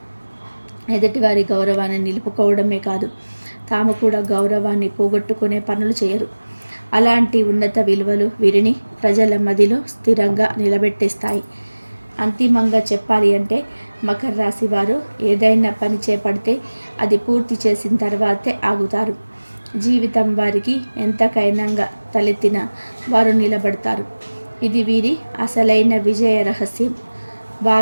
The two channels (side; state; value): both; inverted; correlation -1.00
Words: ఎదుటివారి గౌరవాన్ని నిలుపుకోవడమే కాదు, తాము కూడా గౌరవాన్ని పోగొట్టుకునే పనులు చేయరు. అలాంటి ఉన్నత విలువలు వీరిని ప్రజల మదిలో స్థిరంగా నిలబెట్టేస్తాయి. అంతిమంగా చెప్పాలి అంటే మకర రాశి వారు ఏదైనా పని చేపడితే అది పూర్తి చేసిన తర్వాతే ఆగుతారు. జీవితం వారికి ఎంతకైనా తలెత్తినా వారు నిలబడతారు. ఇది వీరి అసలైన విజయ రహస్యం.